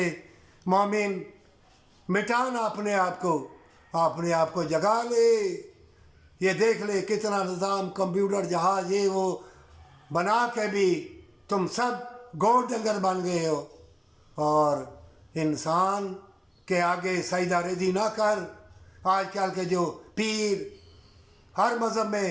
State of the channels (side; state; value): both; identical; correlation 1.00